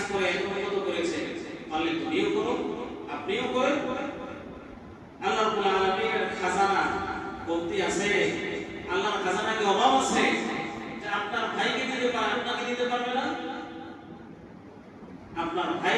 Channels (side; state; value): both; identical; correlation 1.00